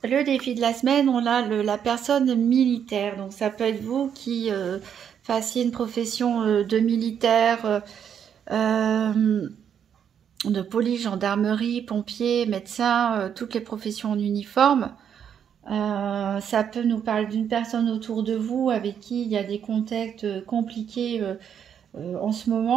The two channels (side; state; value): left; quieter; 8.4 dB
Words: le défi de la semaine, on a la personne militaire. Donc ça peut être vous qui fassiez une profession de militaire, de police, gendarmerie, pompier, médecin, toutes les professions en uniforme. Ça peut nous parler d'une personne autour de vous avec qui il y a des contacts compliqués en ce